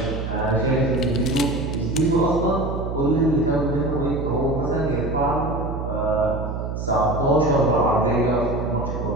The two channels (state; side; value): noise; right; hum, 5 dB below the sound